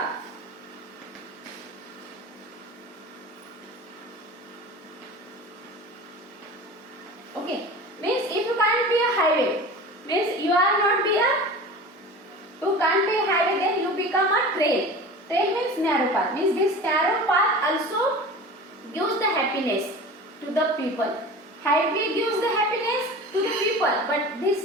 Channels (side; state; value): both; normal; correlation 0.36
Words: Okay. Means if you can't be a highway, means you can't be a highway, then you become a trail. Trail means narrow path. Means this narrow path also gives the happiness to the people. Highway gives the happiness to the people, but